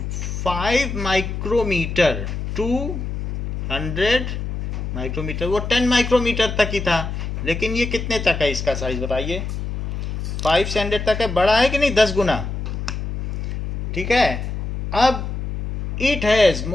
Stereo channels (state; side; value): noise; left; hum, 4 dB below the sound